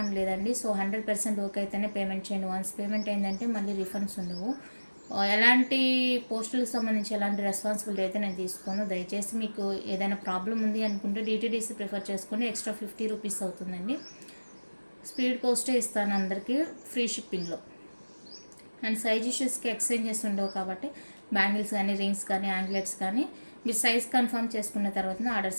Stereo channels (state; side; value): inverted; both; correlation -1.00